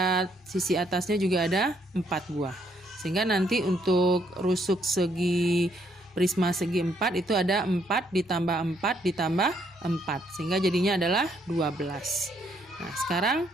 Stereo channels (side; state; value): both; normal; correlation 0.71